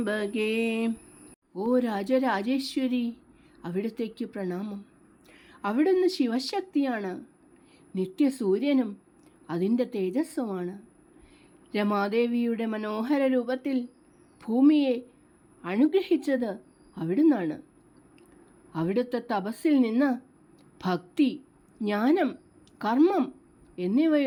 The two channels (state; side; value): identical; both; correlation 1.00